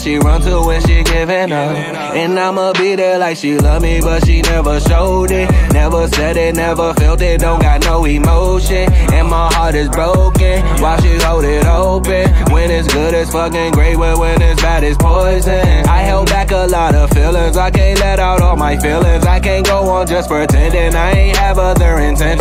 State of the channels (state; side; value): identical; both; correlation 1.00